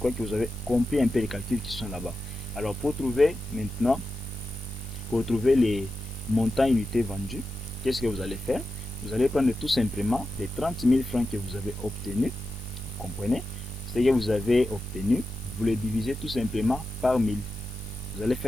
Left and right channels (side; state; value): left; noise; hiss, 21 dB below the sound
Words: que vous avez compris un peu les calculs qui sont là-bas. Alors, pour trouver maintenant pour trouver les montants unités vendus, qu'est-ce que vous allez faire? Vous allez prendre tout simplement les 30 000 francs que vous avez obtenus, vous comprenez? Ce que vous avez obtenu, vous le divisez tout simplement par 1000. Vous allez